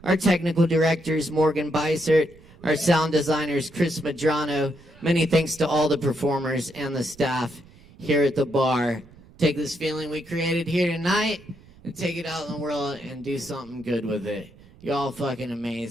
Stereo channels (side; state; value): right; noise; rumble, 24 dB below the sound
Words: Our technical director is Morgan Beissert. Our sound designer is Chris Madrano. Many thanks to all the performers and the staff here at the bar. Take this feeling we created here tonight and take it out in the world and do something good with it. Y'all fucking